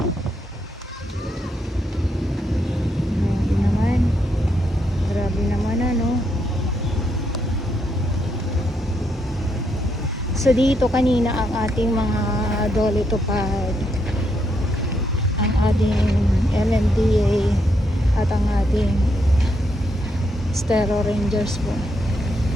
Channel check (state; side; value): normal; both; correlation 0.78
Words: So dito kanina ang ating mga dolitupad, ang ating MMDA at ang ating Stero Rangers po.